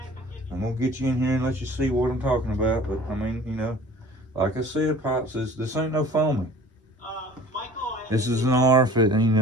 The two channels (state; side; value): normal; both; correlation 0.47